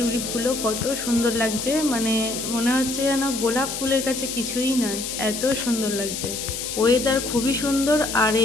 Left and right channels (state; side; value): noise; left; hiss, 5 dB below the sound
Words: কত সুন্দর লাগছে, মানে মনে হচ্ছে যেন গোলাপ ফুলের কাছে কিছুই নয়, এত সুন্দর লাগছে। ওয়েদার খুবই সুন্দর, আর